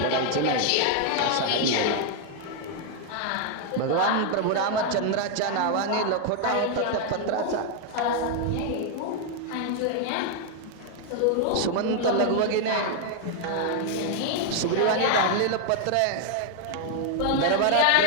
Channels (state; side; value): different; both; correlation 0.00